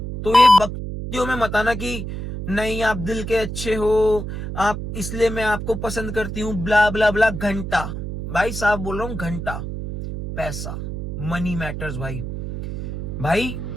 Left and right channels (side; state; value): right; noise; hum, 6 dB below the sound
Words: तो ये बकचोदियों में मत आना कि नहीं आप दिल के अच्छे हो, आप इसलिए मैं आपको पसंद करती हूँ, ब्ला ब्ला ब्ला। घंटा भाई साहब बोल रहा हूँ, घंटा पैसा, मनी मैटर्स भाई। भाई